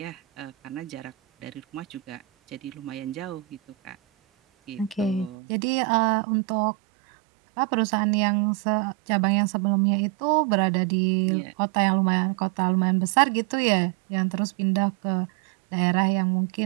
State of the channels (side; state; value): left; drops out; at 5.4 s